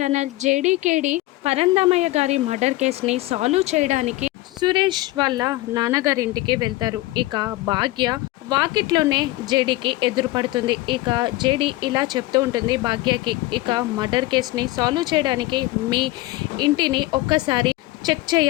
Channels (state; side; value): quieter; right; 18.8 dB